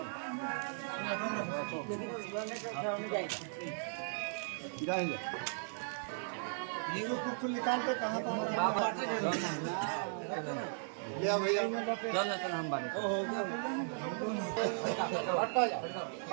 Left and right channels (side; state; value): left; silent; digital silence